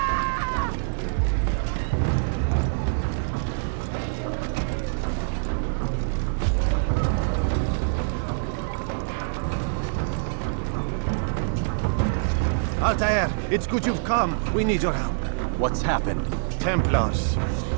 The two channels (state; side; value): silent; left; digital silence